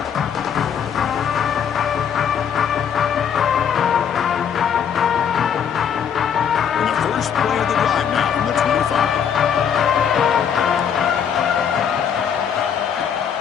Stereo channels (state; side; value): quieter; right; 7.9 dB